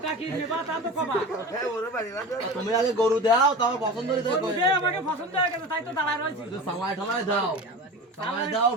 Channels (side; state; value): both; normal; correlation 0.32